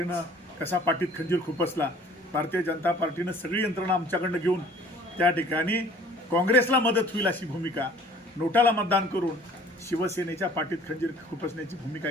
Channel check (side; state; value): both; normal; correlation 0.52